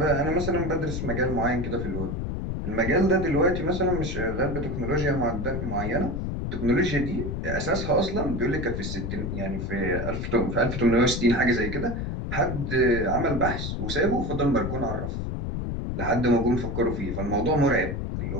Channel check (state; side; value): noise; left; rumble, 3 dB below the sound